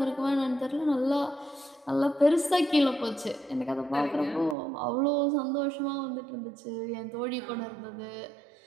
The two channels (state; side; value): drops out; left; at 4.5 s